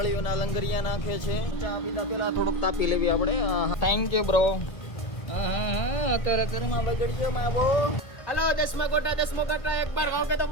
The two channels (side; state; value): right; late; 1.7 ms